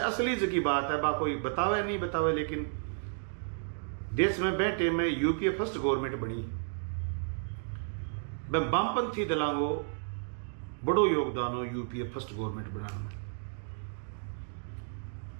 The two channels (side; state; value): left; silent; digital silence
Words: जगी बात है, बा कोई बतावे नहीं बतावे, लेकिन देश में बैठे में यूपीए फर्स्ट गवर्नमेंट बनी। वामपंथी दलांगो बड़ो योगदान हो यूपीए फर्स्ट गवर्नमेंट बनाने में।